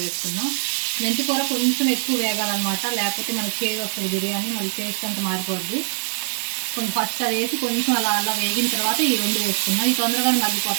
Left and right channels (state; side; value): silent; left; digital silence